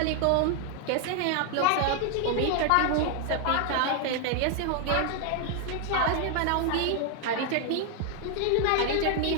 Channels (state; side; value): different; both; correlation 0.00